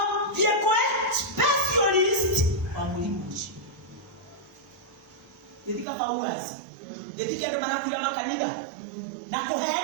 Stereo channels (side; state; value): left; drops out; at 5.9 s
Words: diekwe specialist wa mulimo. Yedika pauazi. Yedika ndo manakuja makanitha. Na